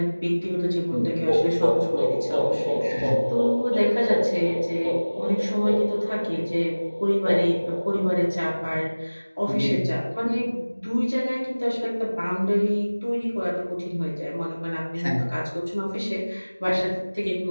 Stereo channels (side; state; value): both; inverted; correlation -1.00